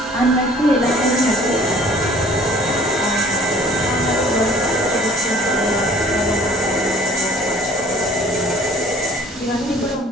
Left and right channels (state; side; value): normal; both; correlation 0.53